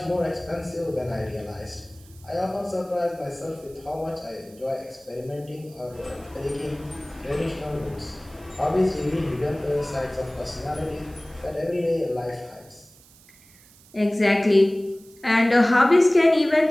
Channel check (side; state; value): right; noise; hiss, 26 dB below the sound